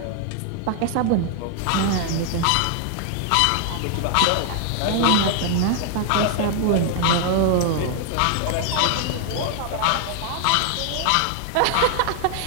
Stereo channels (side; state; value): both; different; correlation 0.00